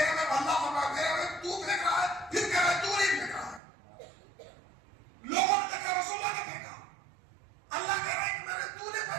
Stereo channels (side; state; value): left; drops out; at 3.6 s